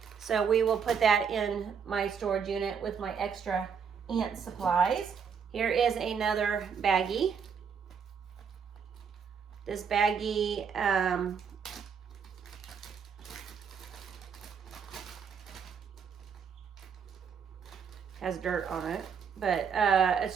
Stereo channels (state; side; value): quieter; left; 6.7 dB